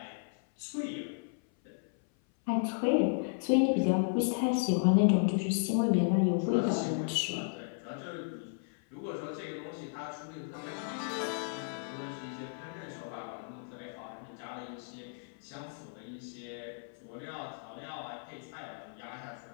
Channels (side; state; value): right; silent; 55 dB below the other